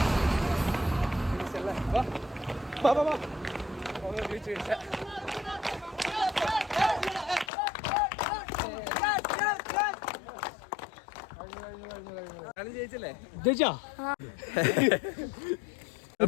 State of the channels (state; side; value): drops out; right; at 7.5 s